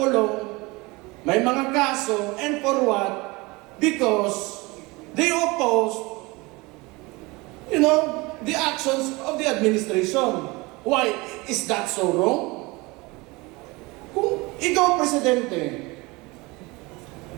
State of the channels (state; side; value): quieter; left; 24.0 dB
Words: may mga kaso, and for what? Because they opposed the actions of the administration. Why? Is that so wrong? Kung ikaw presidente,